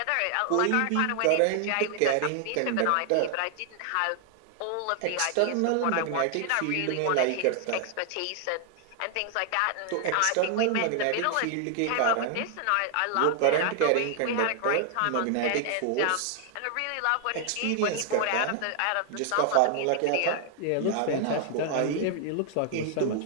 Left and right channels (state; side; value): different; both; correlation 0.00